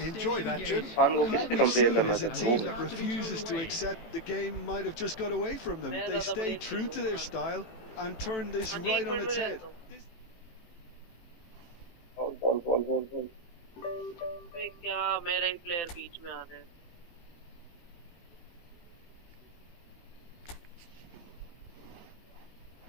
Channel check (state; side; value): late; right; 18 ms